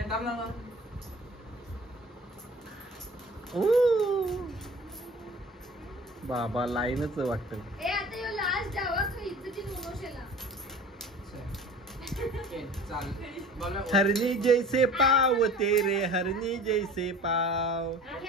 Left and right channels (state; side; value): normal; both; correlation 0.42